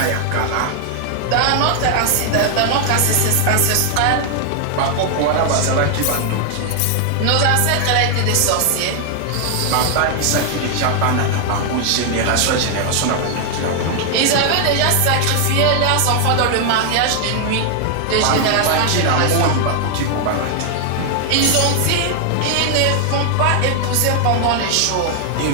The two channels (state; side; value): different; both; correlation 0.00